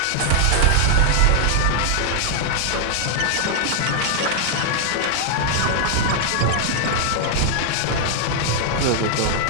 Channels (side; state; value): both; different; correlation -0.01